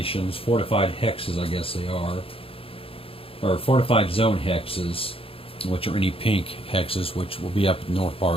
fortified hexes, I guess they are, or fortified zone hexes, which are any pink hexes, which will be up in the north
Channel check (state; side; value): late; right; 0.27 ms